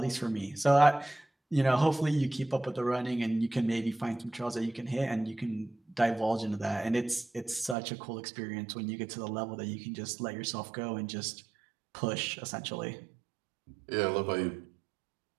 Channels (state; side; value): drops out; left; at 7.8 s